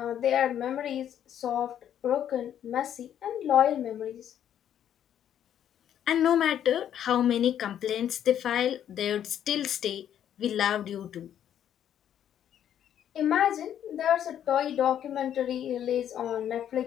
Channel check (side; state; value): right; quieter; 10.0 dB